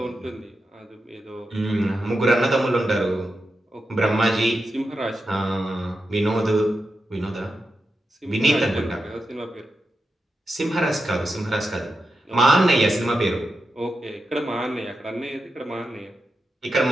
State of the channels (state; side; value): normal; both; correlation 0.89